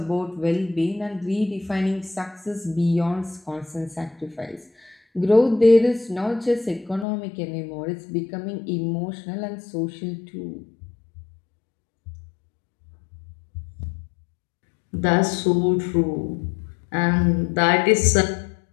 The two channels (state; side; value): drops out; right; at 7.1 s